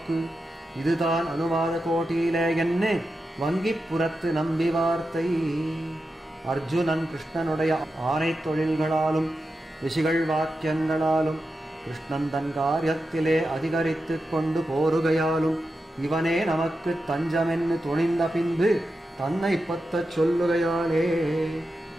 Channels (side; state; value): both; normal; correlation 0.89